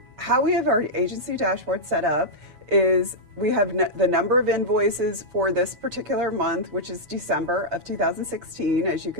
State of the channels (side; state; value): left; late; 7.0 ms